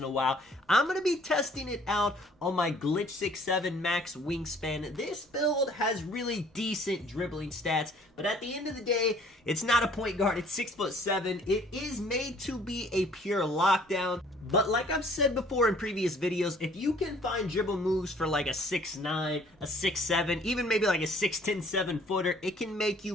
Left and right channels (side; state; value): both; normal; correlation 0.56